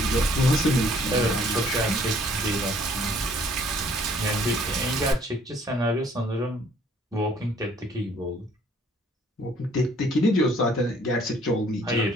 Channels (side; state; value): both; normal; correlation 0.60